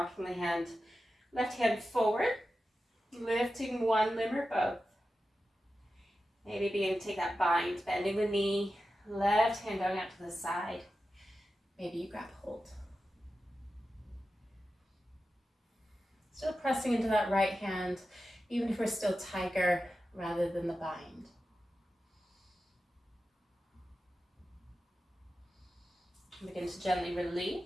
the hand, left hand forward, lifting one limb or both. Maybe beginning to take that bind, bending the knee, left hand going out to the side. Maybe you grab hold. Still pressing into that right hand, even if we're still tiger rather than the bind. Begin to gently release.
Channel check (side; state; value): both; normal; correlation 0.92